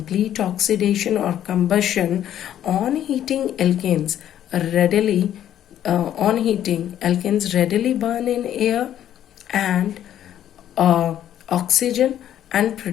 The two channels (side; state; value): right; quieter; 11.1 dB